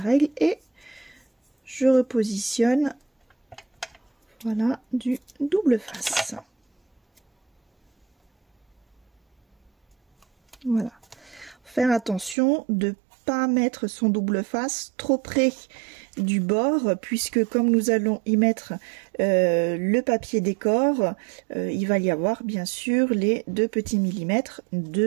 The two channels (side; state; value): left; drops out; at 12.4 s